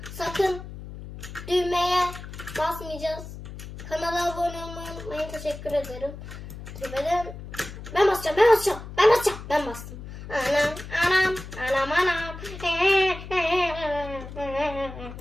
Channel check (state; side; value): noise; left; hum, 12 dB below the sound